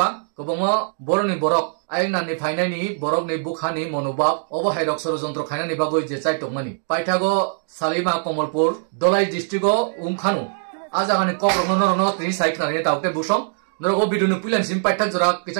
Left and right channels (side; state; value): left; silent; 64 dB below the other